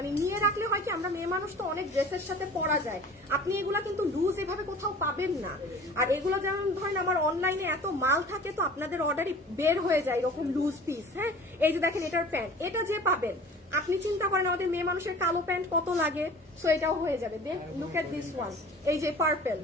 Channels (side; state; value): both; normal; correlation 0.43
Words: নিয়ে রাখলে হয় কি, আমরা মেয়ে মানুষ তো অনেক ড্রেসের সাথে পরা যায়, আপনি এগুলা কিন্তু লুজ এভাবে কোথাও পাবেন না। আর এগুলো যেমন ধরেন আমার অনলাইনে এত মাল থাকে তো আপনাদের অর্ডারই বের হয়ে যায় এরকম লুজ পিস। হ্যাঁ এই যে দেখেন এটার প্যান্ট, এটা যে পাবেন, আপনি চিন্তা করেন আমাদের মেয়ে মানুষের কালো প্যান্ট কত লাগে, সো এটাও হয়ে যাবে। দেন লুক এট দিস ওয়ান, এই যে পার্পল,